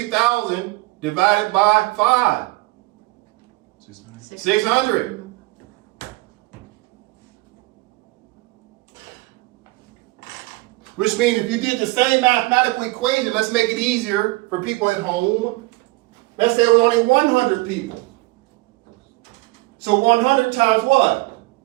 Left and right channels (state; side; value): quieter; left; 23.1 dB